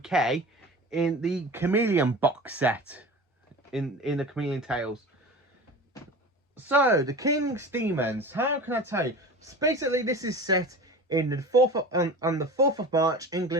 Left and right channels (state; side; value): normal; both; correlation 0.35